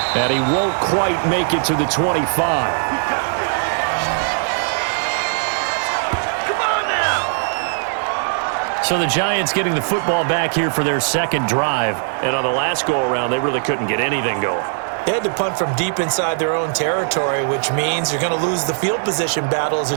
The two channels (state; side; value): silent; left; digital silence